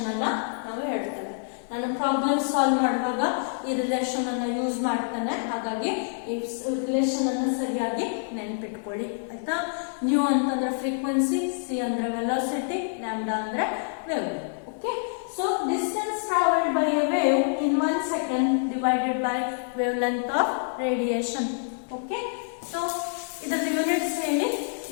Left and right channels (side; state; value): right; silent; digital silence